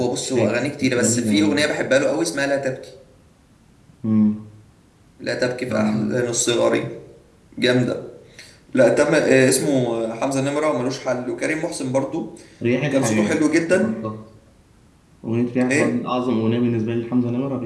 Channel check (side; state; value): both; identical; correlation 1.00